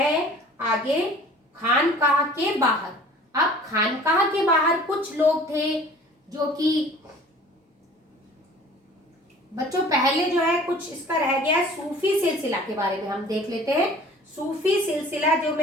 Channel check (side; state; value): both; normal; correlation 0.47